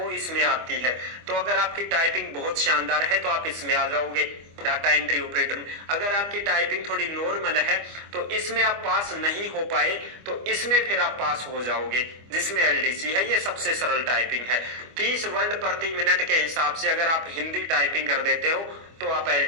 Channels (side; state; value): left; late; 25 ms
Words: इसमें आती है। तो अगर आपकी टाइपिंग बहुत शानदार है तो आप इसमें आ जाओगे। डाटा एंट्री ऑपरेटर में। अगर आपकी टाइपिंग थोड़ी नॉर्मल है तो इसमें आप पास नहीं हो पाए तो इसमें फिर आप पास हो जाओगे, जिसमें एलडीसी है। ये सबसे सरल टाइपिंग है। 30 वर्ड प्रति मिनट के हिसाब से अगर आप हिंदी टाइपिंग कर देते हो तो आप